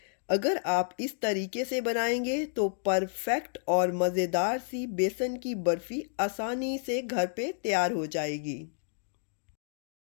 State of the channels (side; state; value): right; silent; digital silence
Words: अगर आप इस तरीके से बनाएंगे तो परफेक्ट और मज़ेदार सी बेसन की बर्फ़ी आसानी से घर पे तैयार हो जाएगी।